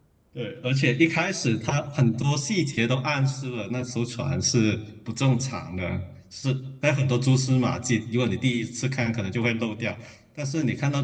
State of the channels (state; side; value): identical; both; correlation 1.00